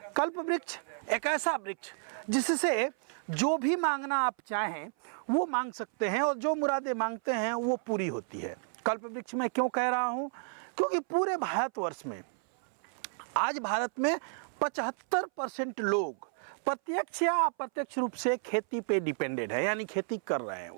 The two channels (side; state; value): left; silent; 57 dB below the other